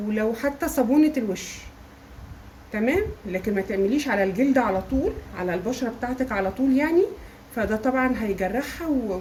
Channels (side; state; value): both; identical; correlation 1.00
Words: لو حتى صابونه الوش. تمام. لكن ما تعمليش على الجلد على طول، على البشره بتاعتك على طول يعني. فده طبعا هيجرحها